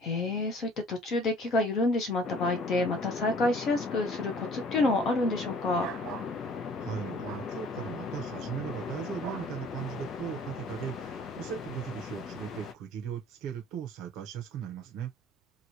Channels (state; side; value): normal; both; correlation 0.53